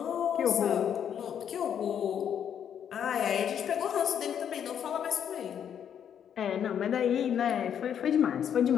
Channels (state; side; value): quieter; right; 8.8 dB